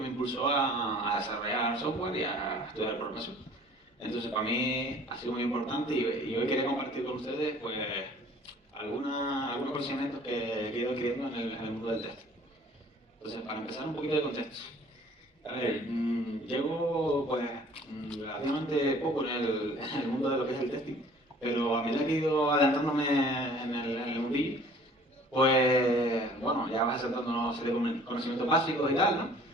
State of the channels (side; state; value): both; normal; correlation 0.52